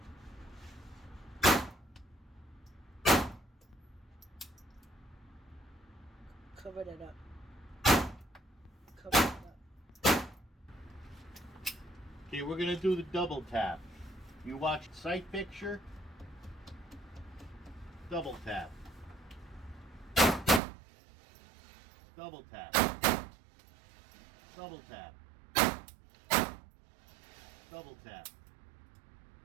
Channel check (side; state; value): left; drops out; at 20.6 s